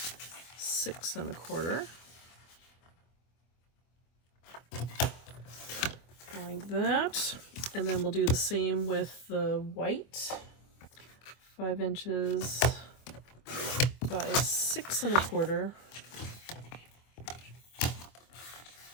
6.25, like that. And then we'll do the same with the white. 5 inches by 6.25.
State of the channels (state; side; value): late; right; 24 ms